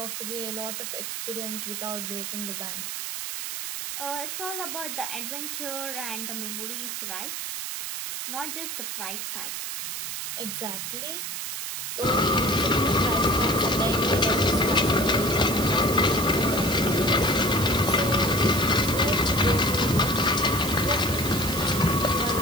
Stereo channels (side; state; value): right; noise; hiss, 5 dB below the sound